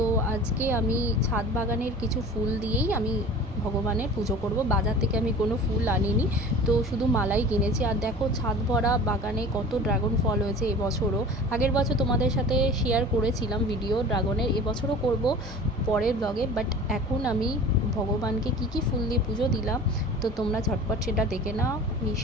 আজকে আমি ছাদ বাগানের কিছু ফুল দিয়েই আমি ভগবানের পুজো করব। বাজার থেকে আমি কোনো ফুল আনিনি, তো শুধু মালাই কিনেছি। আর দেখো ছাদ ভরা বাগানে কত ড্রাগন ফল হয়েছে এবছরও। আগের বছর তোমাদের সাথে শেয়ার করেছিলাম ভিডিও ড্রাগনের, এবছরও করব পরের ব্লগে। বাট এখন আমি ভগবানকে কি কি ফুল দিয়ে পুজো দিলাম তো তোমরা ঝটপট সেটা দেখে নাও। এই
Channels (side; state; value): both; normal; correlation 0.40